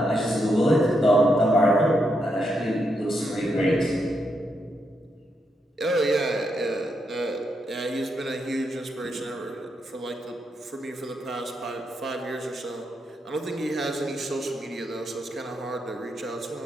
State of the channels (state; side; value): normal; both; correlation 0.81